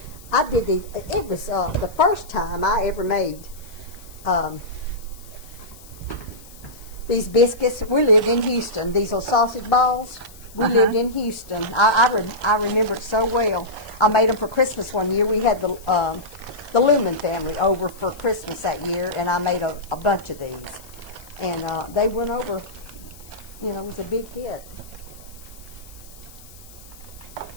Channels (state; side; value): noise; left; hiss, 21 dB below the sound